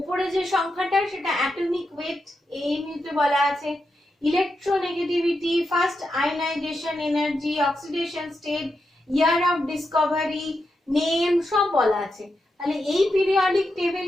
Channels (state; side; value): normal; both; correlation 0.86